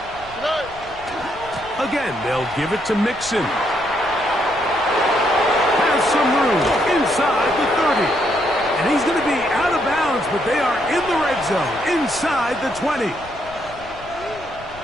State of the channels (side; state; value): left; noise; rumble, 19 dB below the sound